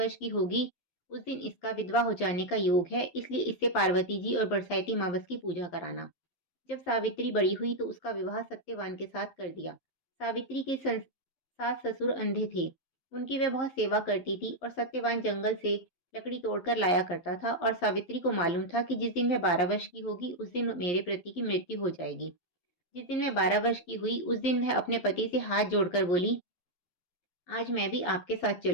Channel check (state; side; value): late; right; 12 ms